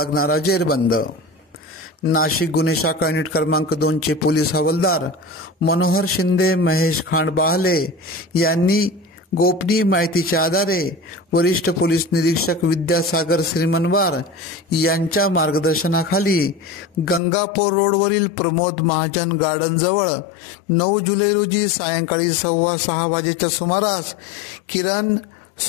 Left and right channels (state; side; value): drops out; right; at 17.2 s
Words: जेरबंद. नाशिक गुन्हे शाखा युनिट क्रमांक 2 चे पोलीस हवालदार मनोहर शिंदे, महेश खांडबाहले यांनी गोपनीय माहितीच्या आधारे वरिष्ठ पोलीस निरीक्षक विद्यासागर श्रीमनवार यांच्या मार्गदर्शनाखाली गंगापूर रोडवरील प्रमोद महाजन गार्डन जवळ 9 जुलै रोजी सायंकाळी 6:15 वाजेच्या सुमारास किरण